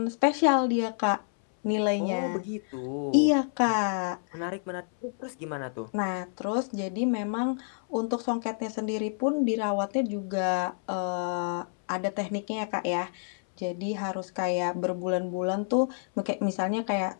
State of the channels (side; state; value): right; silent; 59 dB below the other